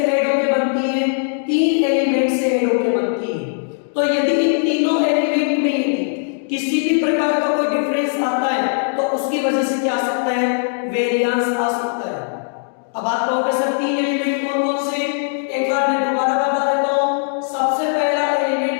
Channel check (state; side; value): silent; right; digital silence